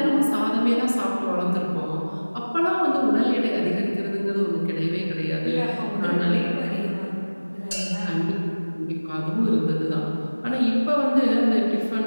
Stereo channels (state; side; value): inverted; both; correlation -1.00